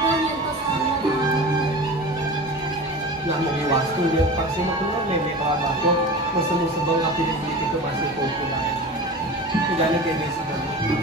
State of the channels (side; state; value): both; normal; correlation 0.33